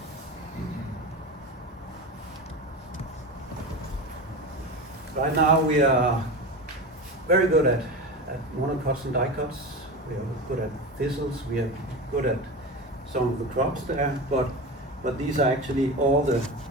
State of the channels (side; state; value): both; normal; correlation 0.25